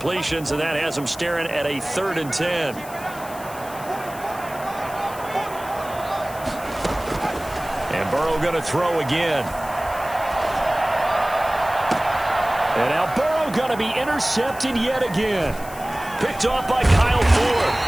and that has them staring at a third and 10. And Burrow going to throw again. And now Burrow going to be intercepted yet again. Picked off by Kyle Ford.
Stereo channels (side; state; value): left; noise; hiss, 17 dB below the sound